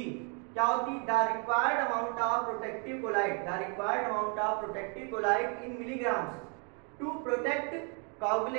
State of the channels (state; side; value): quieter; left; 36.9 dB